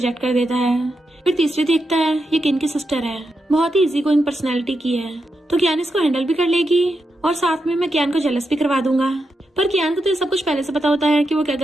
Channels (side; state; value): both; normal; correlation 0.86